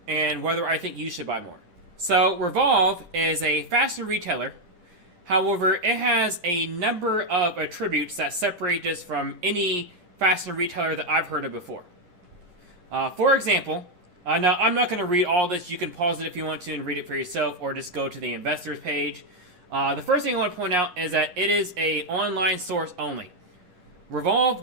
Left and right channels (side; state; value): left; late; 10 ms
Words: and whether I think you should buy more. So, Revolve is a fashion retailer. However, it has a number of attributes that separate this from any fashion retailer that I've heard of before. For example, now I'm not going to read all this. You can pause it if you want to and read it for yourself, or just go to the investors page. The first thing I want to point out is that it is an online source only. Revolve